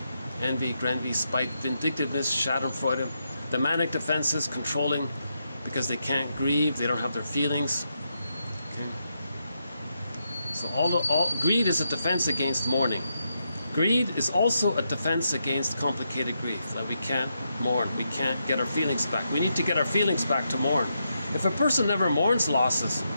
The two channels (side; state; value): both; inverted; correlation -0.83